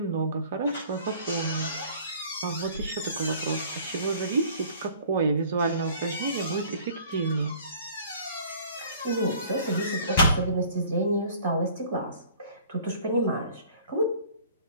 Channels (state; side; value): inverted; both; correlation -0.52